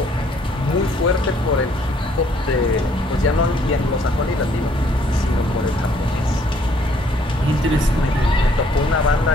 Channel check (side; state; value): both; normal; correlation 0.64